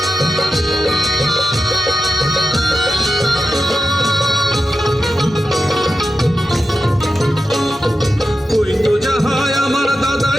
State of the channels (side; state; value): both; normal; correlation 0.91